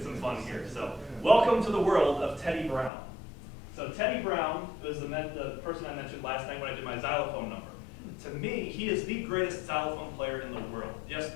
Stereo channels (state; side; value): drops out; right; at 2.9 s